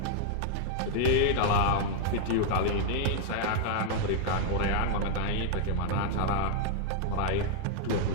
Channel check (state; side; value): different; both; correlation 0.00